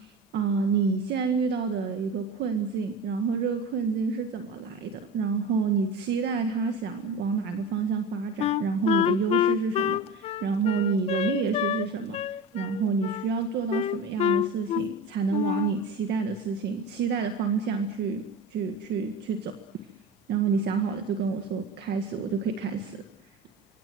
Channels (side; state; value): both; normal; correlation 0.30